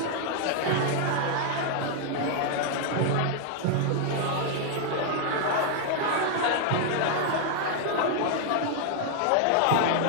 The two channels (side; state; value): both; different; correlation 0.00